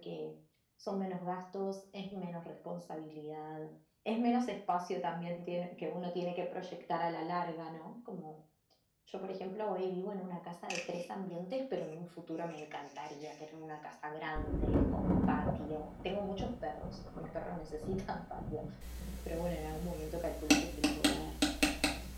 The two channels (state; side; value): identical; both; correlation 1.00